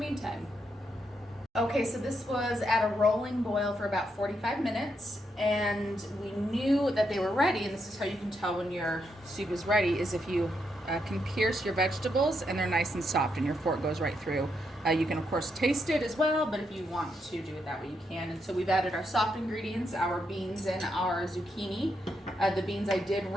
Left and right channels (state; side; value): normal; both; correlation 0.80